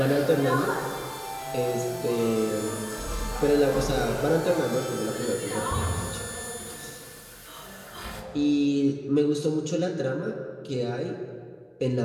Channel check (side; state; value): both; identical; correlation 1.00